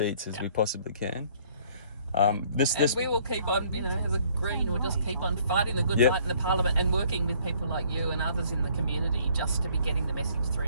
as we possibly can. This we will keep on, you know, as a Green, we'll just keep on fighting the good Yep. fight in the Parliament and working with people like you and others in the community just to be getting the message through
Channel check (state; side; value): inverted; both; correlation -0.60